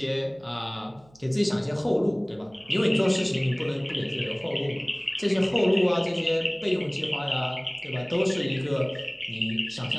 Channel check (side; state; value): right; noise; hum, 28 dB below the sound